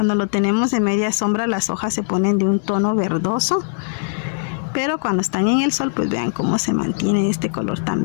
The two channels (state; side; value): silent; right; digital silence